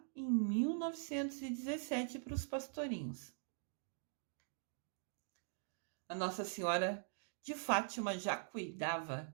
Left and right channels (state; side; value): silent; left; digital silence